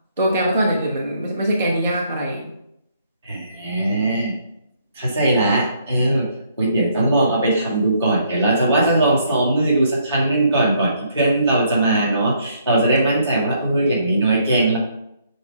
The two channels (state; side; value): inverted; both; correlation -0.68